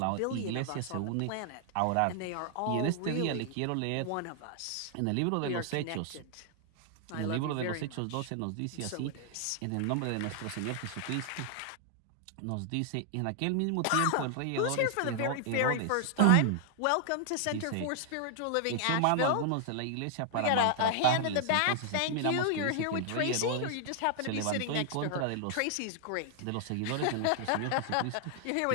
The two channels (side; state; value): both; different; correlation 0.00